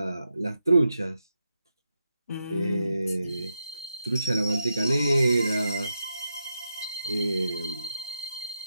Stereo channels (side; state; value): both; inverted; correlation -0.85